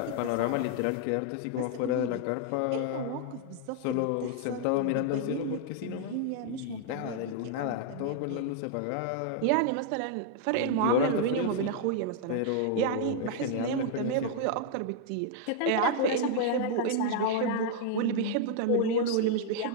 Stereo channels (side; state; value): both; different; correlation 0.00